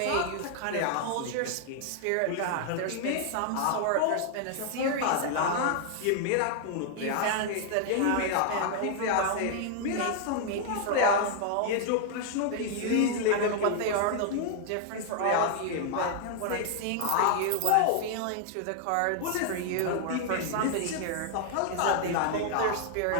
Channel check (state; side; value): different; both; correlation 0.00